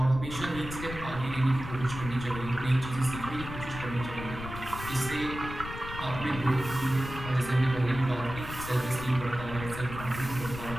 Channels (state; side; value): noise; left; rumble, 9 dB below the sound